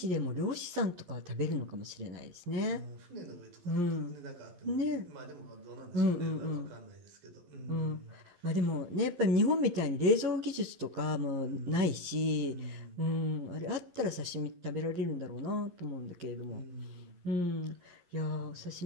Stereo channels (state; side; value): late; left; 11 ms